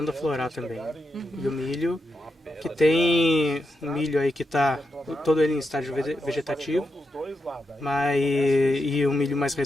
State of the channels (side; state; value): both; normal; correlation 0.86